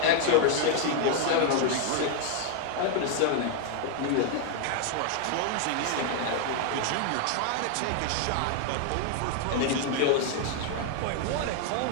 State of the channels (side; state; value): both; different; correlation 0.00